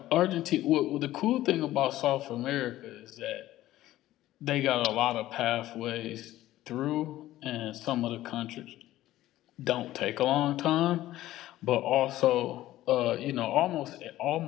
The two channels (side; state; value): right; quieter; 14.9 dB